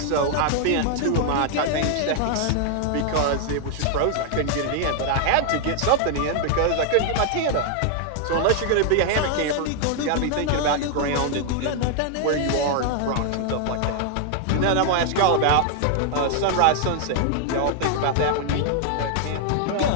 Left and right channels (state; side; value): different; both; correlation 0.00